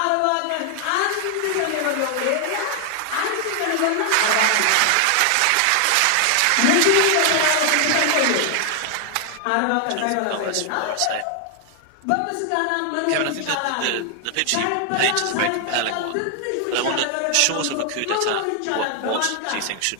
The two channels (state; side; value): different; both; correlation 0.00